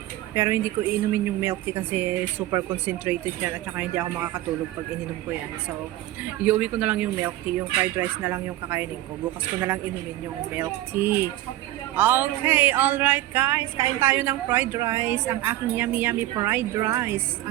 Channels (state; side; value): quieter; left; 15.5 dB